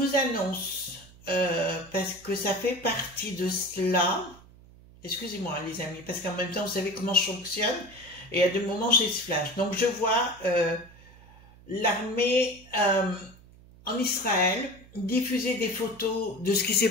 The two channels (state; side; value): noise; right; hum, 23 dB below the sound